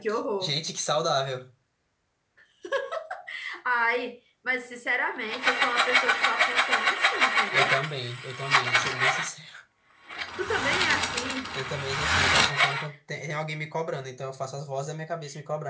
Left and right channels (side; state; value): both; identical; correlation 1.00